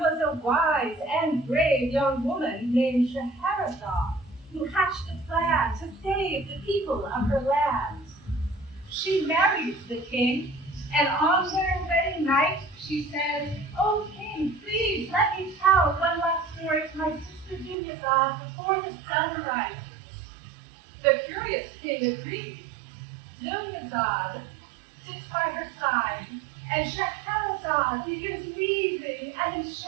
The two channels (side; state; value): left; drops out; at 17.8 s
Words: a wise and brave young woman named Scheherazade who hatched a plan to save the people of her land. She married the king, and on their wedding night, she said, "Oh, king, please let me tell one last story to my sister Dunyazade before the sun rises." The curious king agrees. Dunyazade sits by her side, and Scheherazade begins weaving an